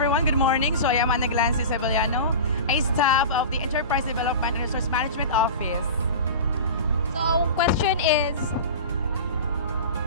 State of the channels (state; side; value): inverted; both; correlation -0.32